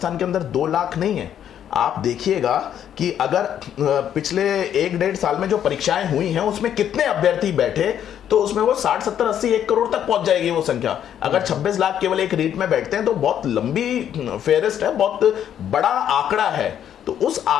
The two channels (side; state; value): right; quieter; 9.8 dB